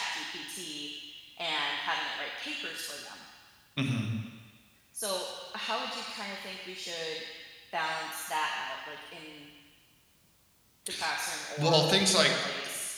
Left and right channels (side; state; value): both; identical; correlation 1.00